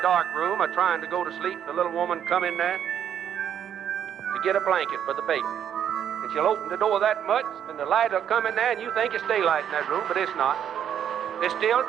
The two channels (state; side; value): quieter; left; 9.3 dB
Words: room or trying to go to sleep, the little woman come in there to get a blanket for the baby. And she'll open the door that much, and the light will come in there, and you think it's daylight in that room, but it's not. It's still